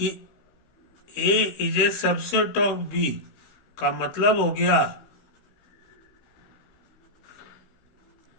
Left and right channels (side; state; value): right; late; 16 ms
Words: A is a subset of B का मतलब हो गया